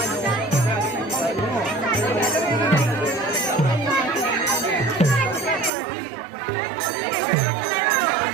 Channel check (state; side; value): drops out; left; at 5.7 s